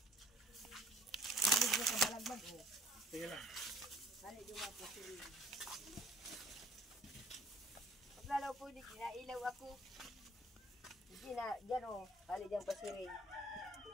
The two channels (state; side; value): normal; both; correlation 0.52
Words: Sige lang. Paglalaw po, di kinailaw ako. Hindi na, dyan o, hali dyan pasirin.